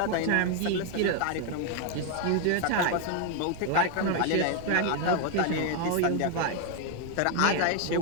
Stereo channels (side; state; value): both; different; correlation 0.01